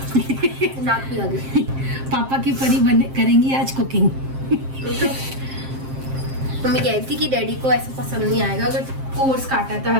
नाक भी आ गई। पापा की परी करेंगी आज कुकिंग। मम्मी कह रही थी कि डैडी को ऐसा पसंद नहीं आएगा अगर कोर्स काटा था,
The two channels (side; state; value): left; late; 7.6 ms